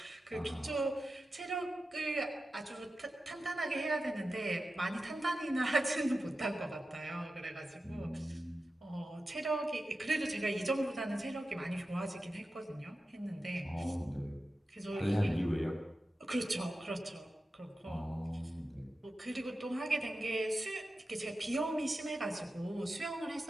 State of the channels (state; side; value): normal; both; correlation 0.92